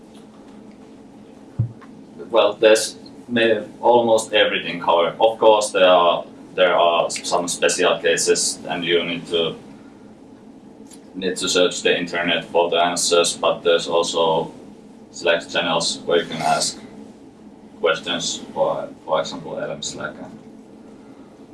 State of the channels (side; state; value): both; identical; correlation 1.00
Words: Well, there's almost everything covered. Of course, there are some special cases, and you need to search the internet for the answers. But there's also Slack channels where you can ask questions, for example, Elm Slack and